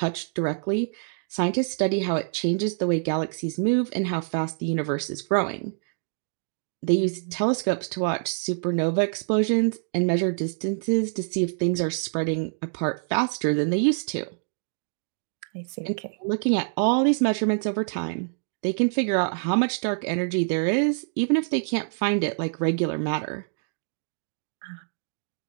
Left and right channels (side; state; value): left; silent; digital silence